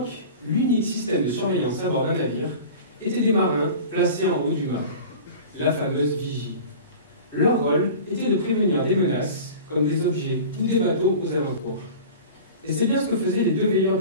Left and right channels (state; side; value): inverted; both; correlation -0.37